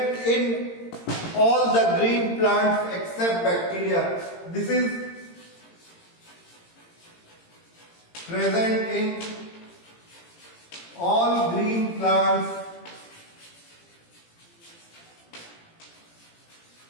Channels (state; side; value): late; right; 18 ms